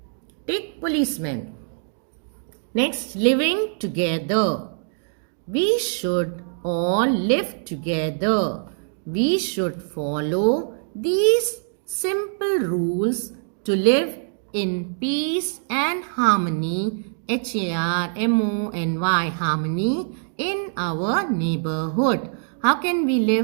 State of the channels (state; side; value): silent; left; digital silence